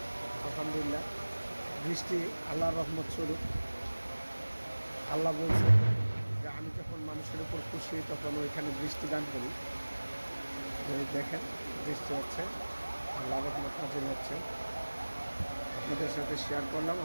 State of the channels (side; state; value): both; inverted; correlation -1.00